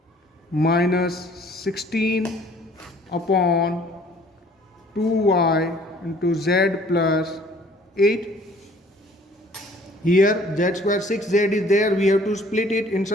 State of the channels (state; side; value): normal; both; correlation 0.56